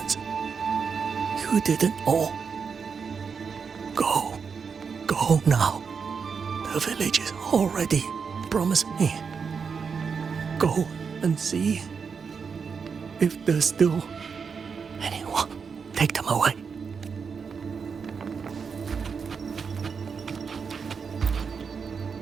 You didn't all. Go now. The village is already promised me. Go and see if there's still anyone. Take them away.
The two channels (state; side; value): quieter; left; 5.9 dB